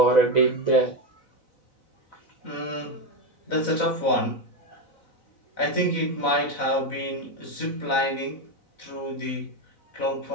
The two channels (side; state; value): right; late; 4.0 ms